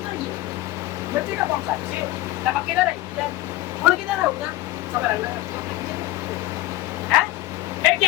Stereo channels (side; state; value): right; quieter; 17.3 dB